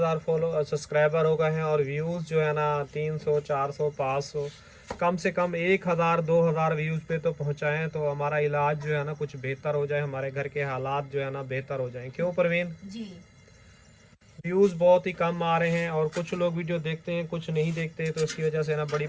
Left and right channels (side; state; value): both; identical; correlation 1.00